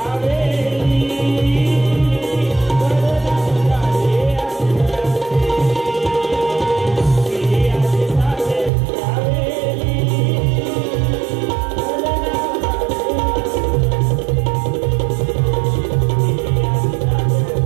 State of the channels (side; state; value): left; drops out; at 8.7 s